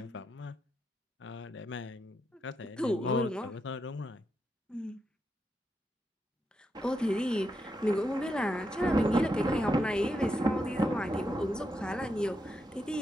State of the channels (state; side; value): normal; both; correlation 0.83